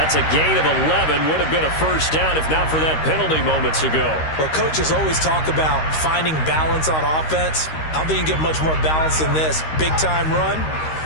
a gain of 11. Would have been a 1st down if not for that penalty moments ago. Well, coaches always talk about finding balance on offense. I don't think you can get much more balance than this. Big-time run,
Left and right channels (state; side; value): late; right; 13 ms